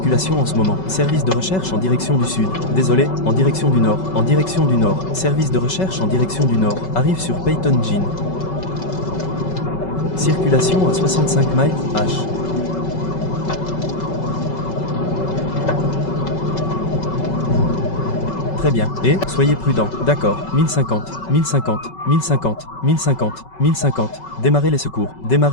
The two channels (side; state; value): right; late; 5.3 ms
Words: en ce moment. Service de recherche en direction du sud. Désolé, en direction du nord. En direction du nord. Service de recherche en direction du nord. Arrive sur Peyton Jean. Circulation à 65 miles H. Très bien. Et, soyez prudents. D'accord. 1050, 1050, 1050, 1050, 1050. Démarrez les secours.